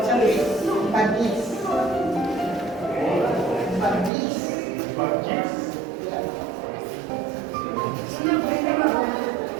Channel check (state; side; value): drops out; left; at 4.1 s